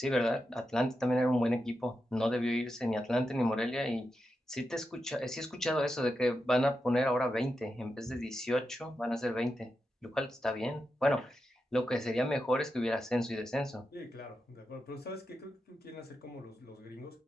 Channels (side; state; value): both; normal; correlation 0.88